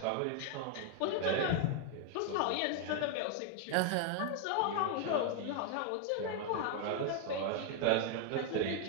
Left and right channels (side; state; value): both; different; correlation 0.00